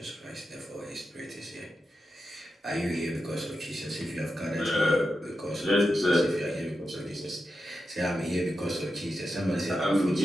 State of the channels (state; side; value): normal; both; correlation 0.89